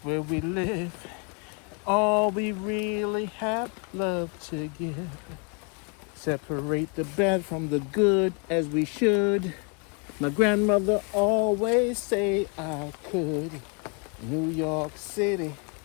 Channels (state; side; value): quieter; right; 36.0 dB